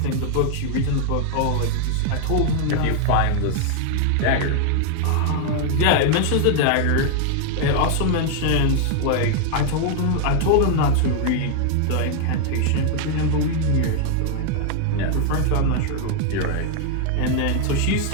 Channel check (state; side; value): different; both; correlation 0.00